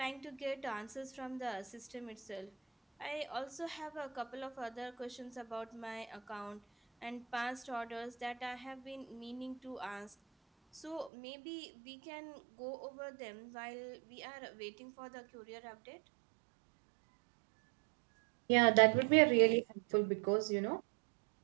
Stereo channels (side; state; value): left; drops out; at 11.1 s